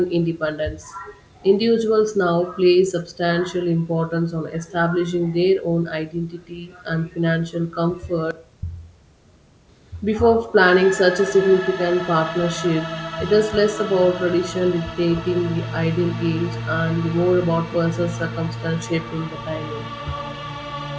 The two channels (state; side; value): identical; both; correlation 1.00